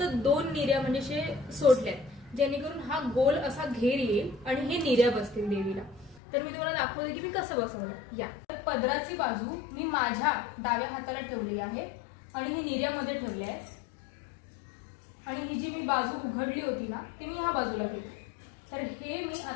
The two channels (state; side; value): drops out; right; at 6.2 s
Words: 2 निऱ्या म्हणजे सोडल्यात जेणेकरून हा गोल असा घेर येईल आणि हे निऱ्या बसतील देवीला. तर मी तुम्हाला दाखवते की मी कसं बसवलं. या पदराची बाजू मी माझ्या डाव्या हाताला ठेवली आहे आणि ही निऱ्यामध्ये ठेवली आहे आणि ही जी मी बाजू उघडली होती ना ती मी ह्या बाजूला घेतली. तर हे मी